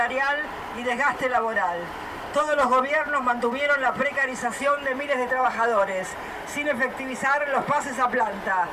y desgaste laboral. Todos los gobiernos mantuvieron la precarización de miles de trabajadores, sin efectivizar los pases a planta.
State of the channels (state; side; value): identical; both; correlation 1.00